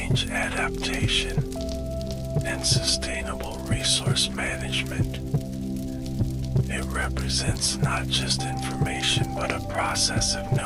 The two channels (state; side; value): identical; both; correlation 1.00